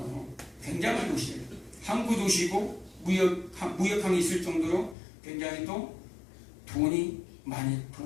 굉장한 도시예요. 항구 도시고 무역항이 있을 정도로 굉장히 또 돈이 많이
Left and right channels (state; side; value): drops out; right; at 5.0 s